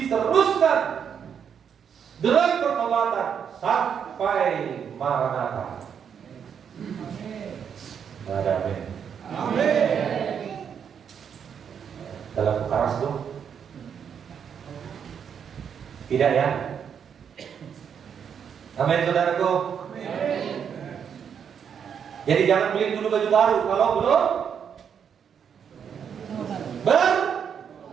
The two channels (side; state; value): left; quieter; 7.6 dB